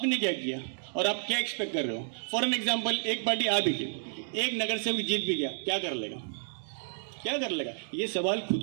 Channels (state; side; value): silent; left; 57 dB below the other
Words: क्या किया और आप क्या एक्सपेक्ट कर रहे हो। फॉर एन एग्जाम्पल, एक पार्टी आ भी गई, एक नगर सेवक जीत भी गया, क्या कर लेगा? ये सवाल खुद